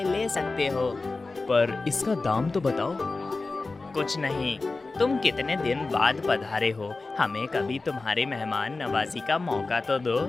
ले सकते हो। पर इसका दाम तो बताओ। कुछ नहीं, तुम कितने दिन बाद पधारे हो, हमें कभी तुम्हारे मेहमान नवाजी का मौका तो दो।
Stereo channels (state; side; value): quieter; right; 3.6 dB